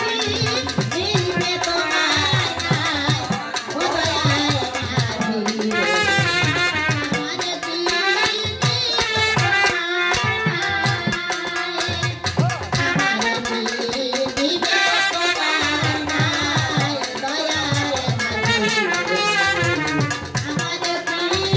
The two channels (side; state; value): both; identical; correlation 1.00